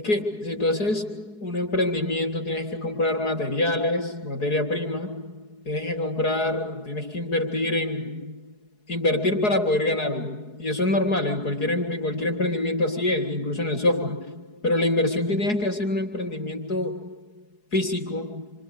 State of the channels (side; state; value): right; late; 4.7 ms